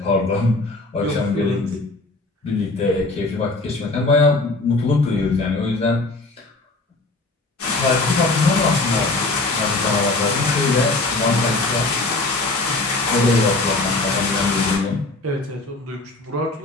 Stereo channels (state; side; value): quieter; right; 3.2 dB